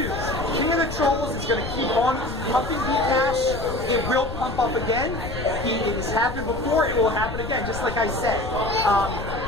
King of the Trolls is going to keep on pumping Bcash. It will pump up again. It has happened before. It will happen again, just like I said.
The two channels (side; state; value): left; noise; rumble, 9 dB below the sound